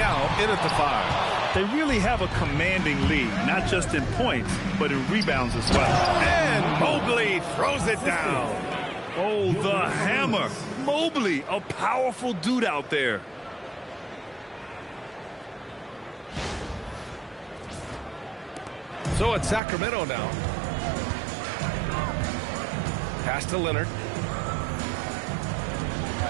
in at the 5. They really have a commanding lead, not just in points, but in rebounds as well. And Mobley throws it down. Oh, the hammer. Mobley, a powerful dude out there. So it's Sacramento now. Pass to Leonard.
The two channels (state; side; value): drops out; left; at 19.6 s